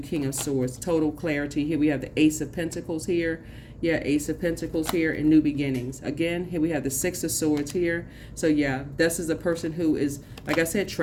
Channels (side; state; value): both; identical; correlation 1.00